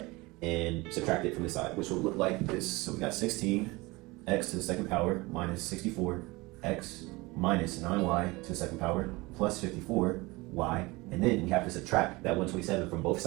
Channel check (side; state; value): left; quieter; 23.0 dB